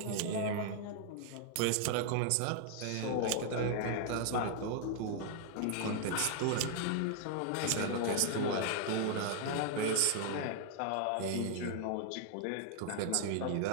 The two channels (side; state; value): both; different; correlation 0.00